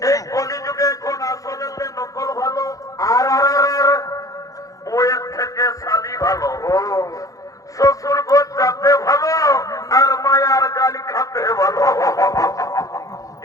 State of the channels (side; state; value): right; late; 0.17 ms